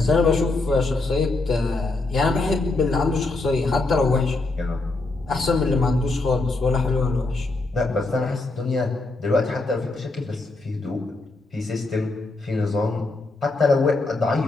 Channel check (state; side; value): quieter; right; 3.2 dB